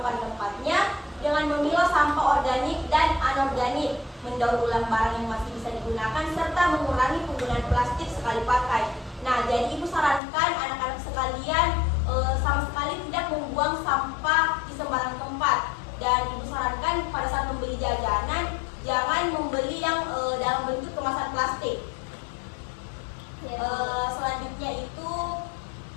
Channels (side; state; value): right; drops out; at 10.2 s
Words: pada tempatnya dengan memilah sampah organik dan anorganik, mendaur ulang barang yang masih bisa digunakan, serta mengurangi penggunaan plastik sekali pakai. Nah, jadi Ibu sarankan anak-anak sekalian sama sekali tidak membuang sampah di sembarang tempat. Dan Ibu sarankan pada saat membeli jajanan, jangan membeli yang dalam bentuk kemasan plastik. Selanjutnya itu